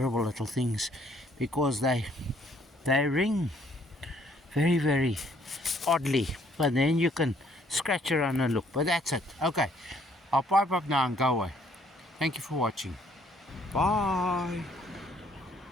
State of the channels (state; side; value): normal; both; correlation 0.64